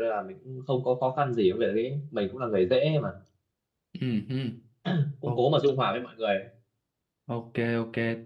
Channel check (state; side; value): identical; both; correlation 1.00